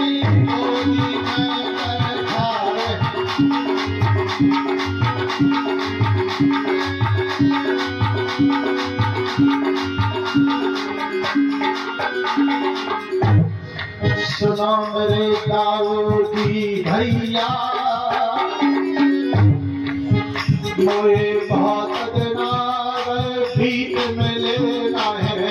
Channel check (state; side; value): identical; both; correlation 1.00